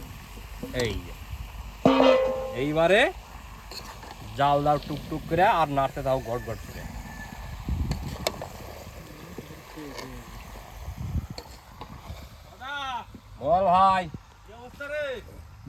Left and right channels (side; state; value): both; identical; correlation 1.00